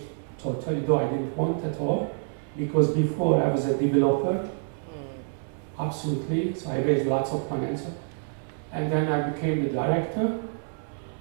totally, though I didn't want at all, because before I was a developer, absolutely, so I raised lots of money, and then I became the director.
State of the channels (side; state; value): left; silent; digital silence